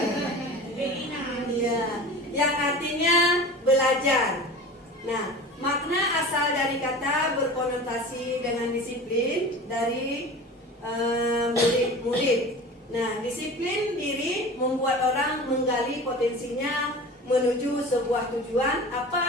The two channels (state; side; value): normal; both; correlation 0.36